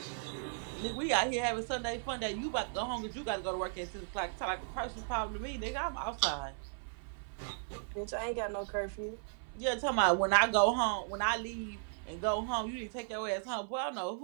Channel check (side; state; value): left; silent; 54 dB below the other